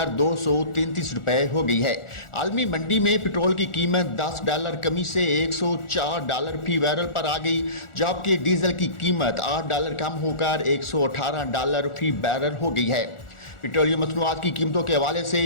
233 रुपये हो गई है। आलमी मंडी में पेट्रोल की कीमत $10 कमी से $104 फी बैरल पर आ गई, जबकि डीजल की कीमत $8 कम होकर $118 फी बैरल हो गई है। पेट्रोलियम मसनूआत की कीमतों के हवाले से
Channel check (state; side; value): late; right; 1.4 ms